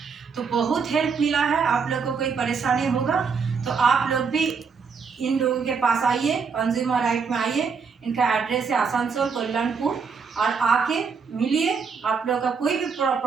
तो बहुत हेल्प मिला है। आप लोग को कोई परेशानी होगा तो आप लोग भी इन लोगों के पास आइए, कंज्यूमर राइट में आइए। इनका एड्रेस है आसनसोल कल्याणपुर, और आके मिलिए। आप लोग का कोई भी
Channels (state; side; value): quieter; left; 5.5 dB